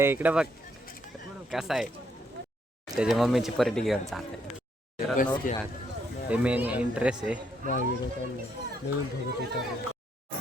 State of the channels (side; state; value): both; normal; correlation 0.73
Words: इकडे बघ कसा आहे. त्याच्या मम्मीची पार्टी घेऊन चालते. हे मेन इंटरेस्ट आहे.